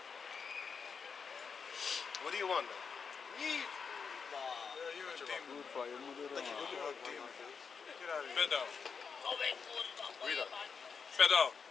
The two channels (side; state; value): right; quieter; 5.8 dB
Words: What do you want, man? Nic, kurwa. Yeah, you a demon. Kurwa, jemu do You're a demon. Get out of here. Pedał. Read that. Pedał.